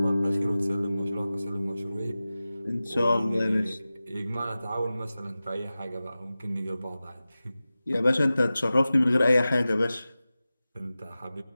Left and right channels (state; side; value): inverted; both; correlation -0.96